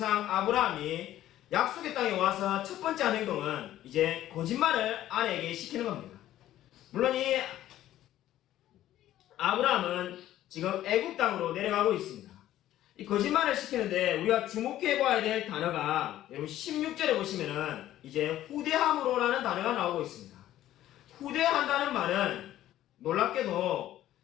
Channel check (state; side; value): quieter; right; 13.3 dB